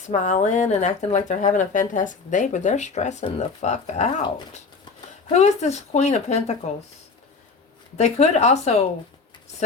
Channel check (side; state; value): right; quieter; 4.6 dB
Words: and acting like they're having a fantastic day, but they're stressing the fuck out. Who is this Queen of Pentacles? They could also